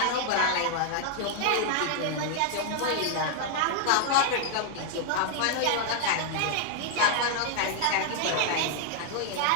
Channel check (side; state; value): both; different; correlation 0.00